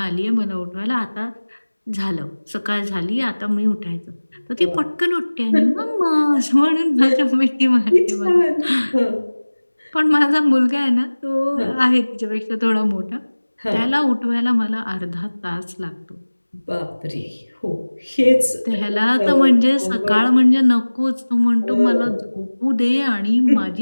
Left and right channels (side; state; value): both; inverted; correlation -1.00